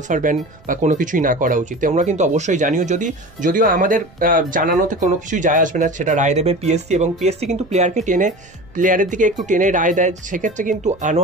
ব্যান বা কোনো কিছুই না করা উচিত। তোমরা কিন্তু অবশ্যই জানিও, যদিও আমাদের জানানোতে কোনো কিছুই যায় আসবে না, সেটা রায় দেবে পিএসসি, এবং পিএসসি কিন্তু প্লেয়ারের দিকে একটু টেনে রায় দেয়। সেক্ষেত্রে কিন্তু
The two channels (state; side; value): noise; right; rumble, 26 dB below the sound